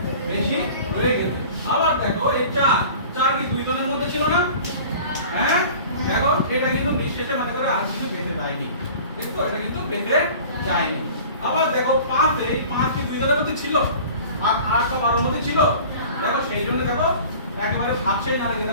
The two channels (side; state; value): both; inverted; correlation -0.43